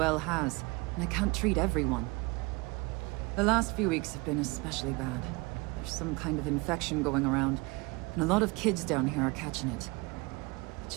has, and I can't treat everyone. The last few weeks have been especially bad. There's some kind of infection going around, and a lot of kids down here are catching it. It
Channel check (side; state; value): left; quieter; 26.0 dB